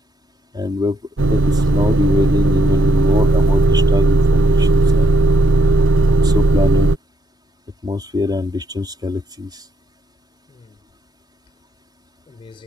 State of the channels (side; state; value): both; normal; correlation 0.76